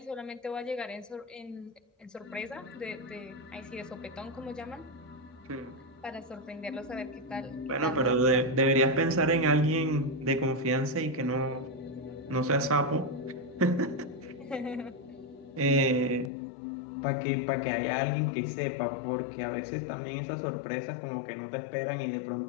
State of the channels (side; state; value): right; drops out; at 16.3 s